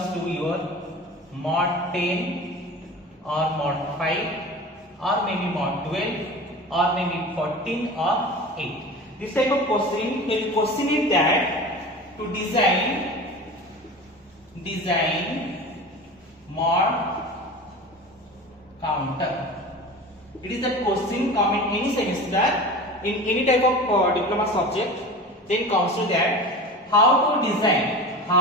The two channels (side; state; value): both; normal; correlation 0.34